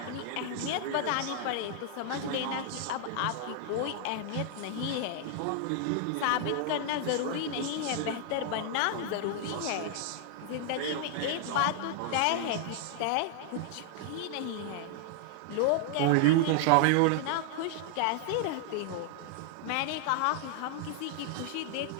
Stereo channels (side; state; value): both; different; correlation 0.00